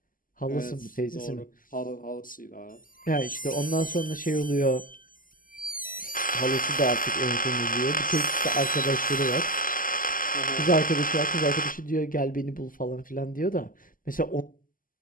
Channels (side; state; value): right; late; 0.41 ms